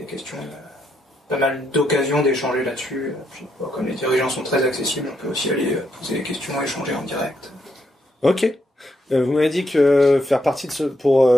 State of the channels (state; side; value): normal; both; correlation 0.78